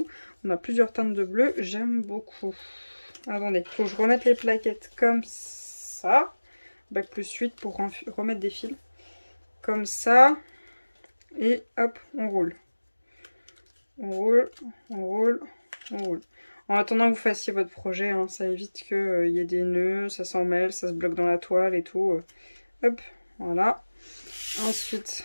On a plusieurs teintes de bleu, j'aime beaucoup. Attendez, il faut que je remette les plaquettes comme ça. Bac plus 8 pour remettre des fils. Comme ça. Et hop, on roule. On roule, on roule, on roule. En attendant que vous fassiez votre projet, hein, ça évite qu'il y ait des nœuds, ça s'en mêle, ça se bloque dans la toile et tout. Hop, voilà.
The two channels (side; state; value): both; inverted; correlation -1.00